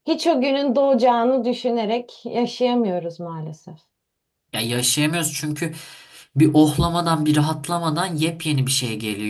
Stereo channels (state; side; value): identical; both; correlation 1.00